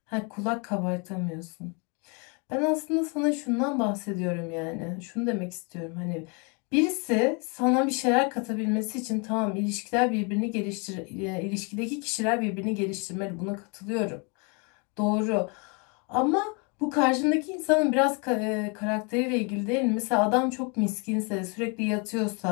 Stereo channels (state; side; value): quieter; right; 33.5 dB